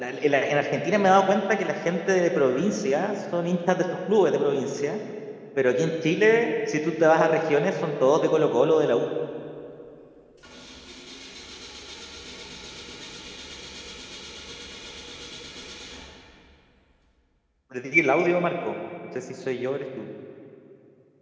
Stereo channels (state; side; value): identical; both; correlation 1.00